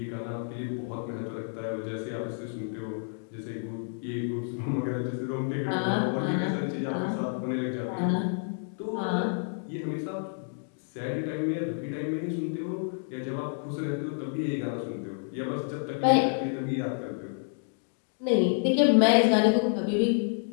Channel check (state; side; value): silent; right; digital silence